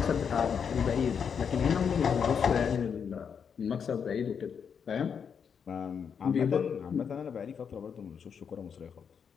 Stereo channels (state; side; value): quieter; right; 6.9 dB